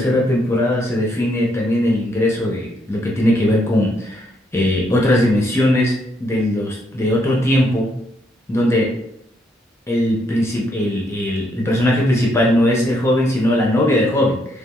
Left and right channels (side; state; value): both; normal; correlation 0.74